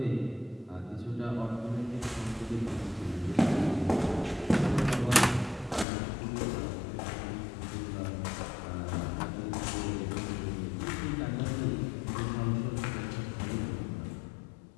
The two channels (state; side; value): drops out; right; at 5.9 s